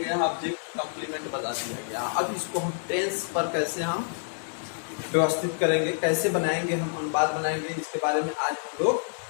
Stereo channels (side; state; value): right; silent; digital silence